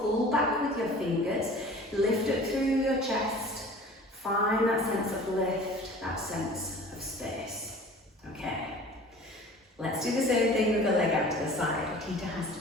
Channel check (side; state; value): both; normal; correlation 0.44